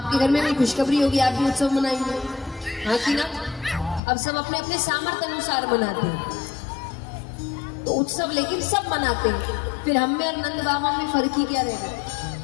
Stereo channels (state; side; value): drops out; right; at 4.0 s